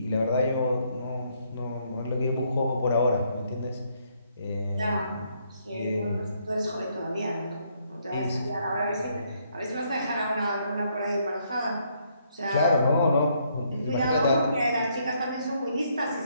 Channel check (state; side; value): inverted; both; correlation -0.72